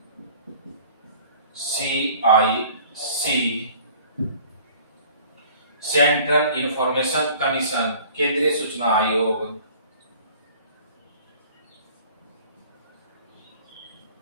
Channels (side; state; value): both; inverted; correlation -0.49